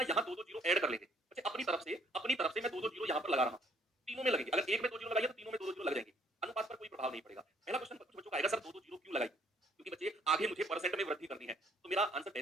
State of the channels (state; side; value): normal; both; correlation 0.64